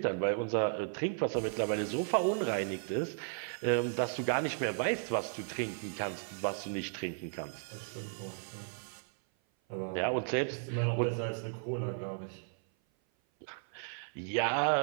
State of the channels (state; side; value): silent; left; 55 dB below the other